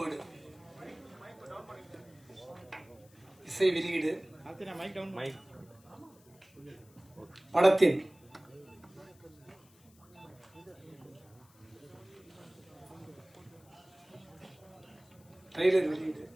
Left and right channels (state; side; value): noise; left; hiss, 28 dB below the sound